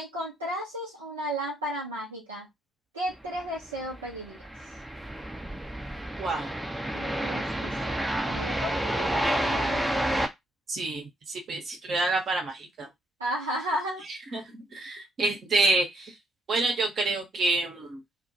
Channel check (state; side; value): normal; both; correlation 0.75